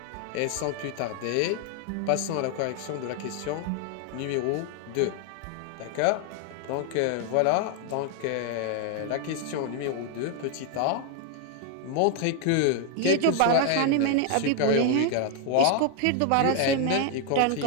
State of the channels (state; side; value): different; both; correlation 0.01